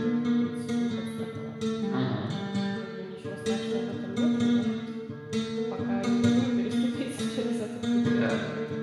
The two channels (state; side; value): identical; both; correlation 1.00